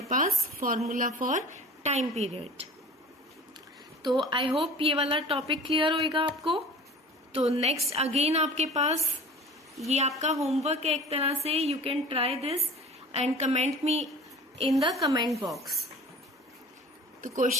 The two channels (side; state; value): both; normal; correlation 0.41